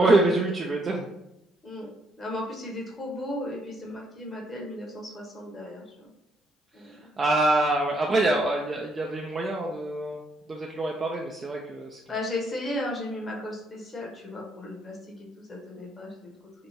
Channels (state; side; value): normal; both; correlation 0.73